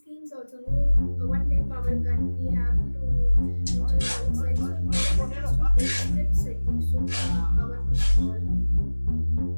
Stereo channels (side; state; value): both; inverted; correlation -1.00